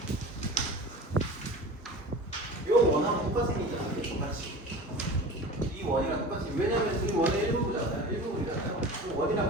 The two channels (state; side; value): normal; both; correlation 0.36